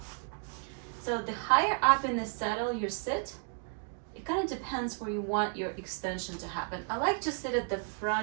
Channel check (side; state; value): left; silent; 56 dB below the other